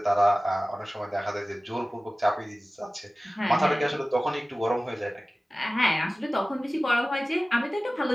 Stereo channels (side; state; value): both; normal; correlation 0.97